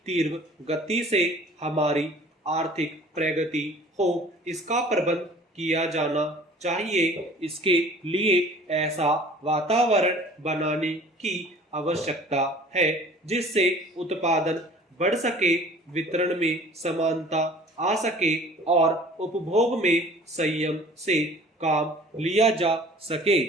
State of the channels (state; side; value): normal; both; correlation 0.48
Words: तीव्र गति से हमारी आर्थिक प्रगति हो, इसका प्रबंध किया जाना चाहिए। इसके लिए ऐसा वातावरण बनाने की आवश्यकता है जिससे उत्पादन बढ़ सके, वितरण में समानता आ सके और उपभोग में संयम से काम लिया जा सके।